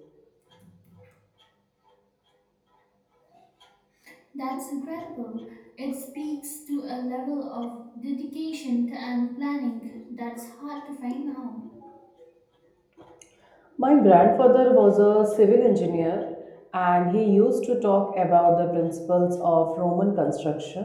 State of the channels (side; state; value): both; identical; correlation 1.00